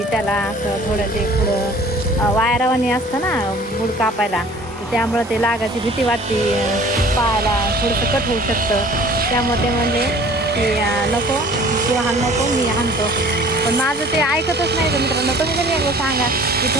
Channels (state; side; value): normal; both; correlation 0.49